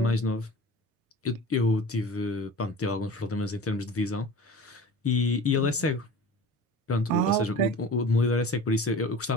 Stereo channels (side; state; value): both; normal; correlation 0.38